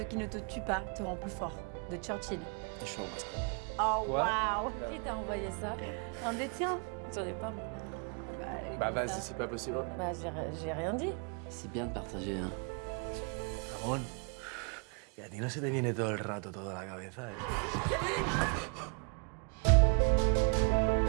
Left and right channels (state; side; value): quieter; left; 36.3 dB